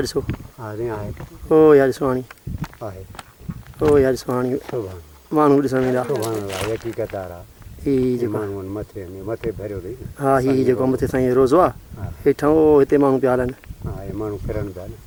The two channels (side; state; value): both; identical; correlation 1.00